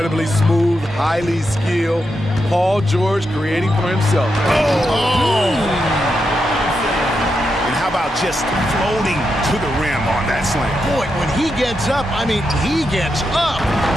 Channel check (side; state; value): both; normal; correlation 0.85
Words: smooth, highly skilled. Paul George creating for himself. And how about just floating to the rim on that slam? Boy, when he gets up, he gets up.